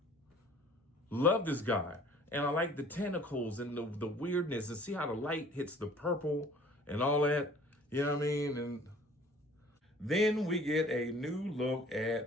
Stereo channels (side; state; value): both; normal; correlation 0.51